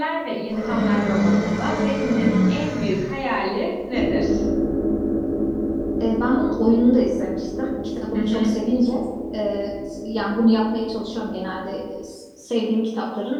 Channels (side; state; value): both; identical; correlation 1.00